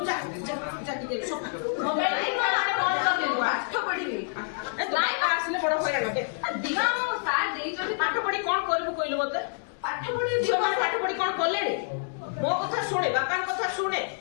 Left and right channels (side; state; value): right; silent; digital silence